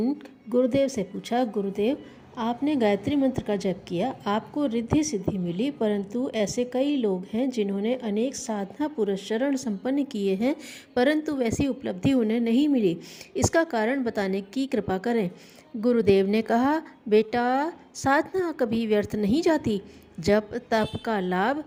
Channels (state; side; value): identical; both; correlation 1.00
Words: गुरुदेव से पूछा, गुरुदेव आपने गायत्री मंत्र का जप किया, आपको रिद्धि सिद्धि मिली, परंतु ऐसे कई लोग हैं जिन्होंने अनेक साधना पुरस्चरण संपन्न किए हैं, परंतु वैसी उपलब्धि उन्हें नहीं मिली। इसका कारण बताने की कृपा करें। गुरुदेव ने कहा, बेटा साधना कभी व्यर्थ नहीं जाती। जप तप का लाभ